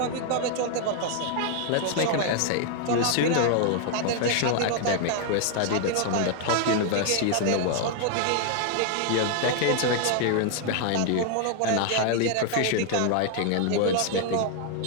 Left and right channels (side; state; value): both; different; correlation 0.00